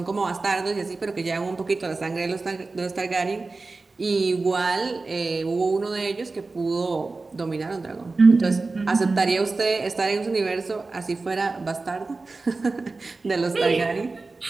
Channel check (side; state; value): left; quieter; 3.7 dB